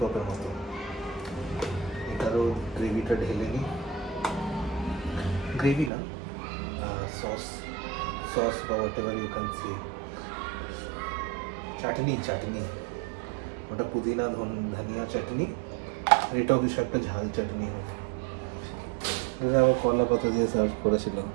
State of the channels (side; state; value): left; drops out; at 5.9 s